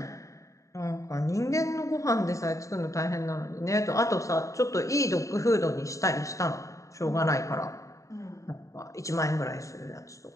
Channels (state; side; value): late; right; 0.16 ms